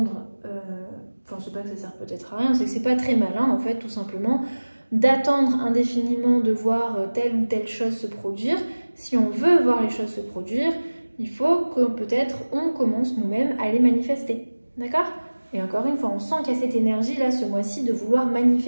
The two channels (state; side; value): inverted; both; correlation -1.00